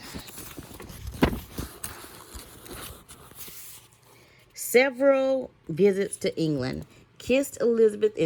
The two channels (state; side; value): identical; both; correlation 1.00